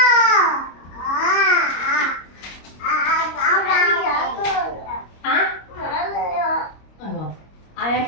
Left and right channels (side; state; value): right; late; 25 ms